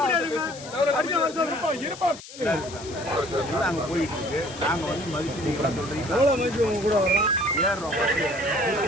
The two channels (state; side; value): noise; left; hiss, 15 dB below the sound